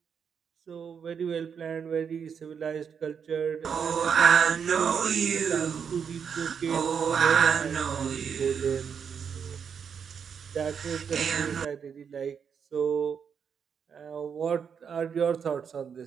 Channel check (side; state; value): left; quieter; 7.0 dB